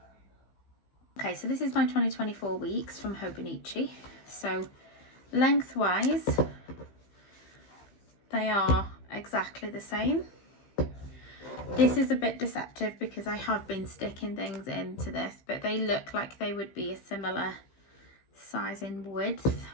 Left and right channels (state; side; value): late; right; 15 ms